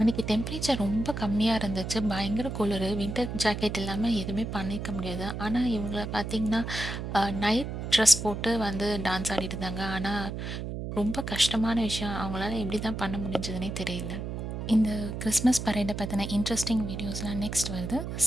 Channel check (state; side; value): noise; right; hum, 5 dB below the sound